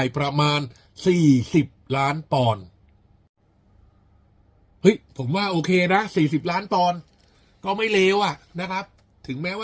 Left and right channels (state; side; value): identical; both; correlation 1.00